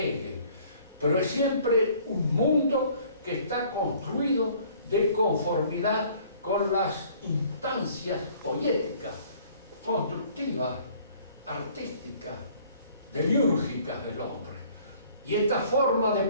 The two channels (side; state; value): both; inverted; correlation -0.56